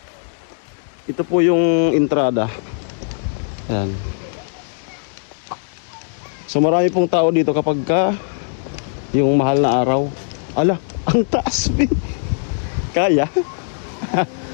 Ito po yung entrada. Yan. So marami pong tao dito kapag ka yung mahal na araw. Ala, ang taas. Kaya?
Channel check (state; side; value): silent; right; digital silence